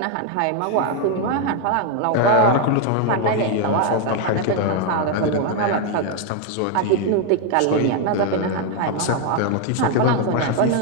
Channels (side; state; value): both; different; correlation 0.01